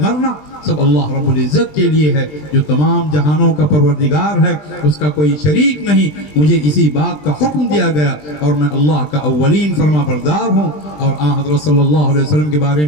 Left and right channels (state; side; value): late; right; 20 ms